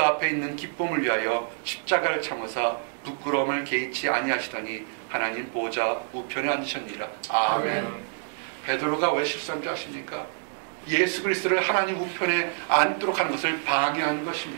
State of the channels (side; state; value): left; silent; 60 dB below the other